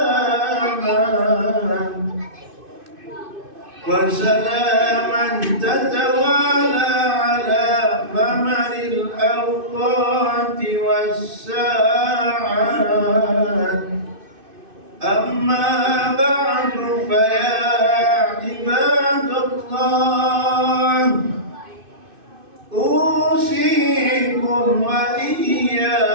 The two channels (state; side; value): late; left; 2.6 ms